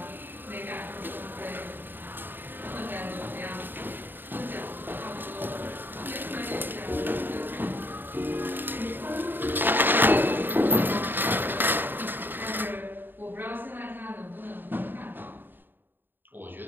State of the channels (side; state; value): left; late; 0.094 ms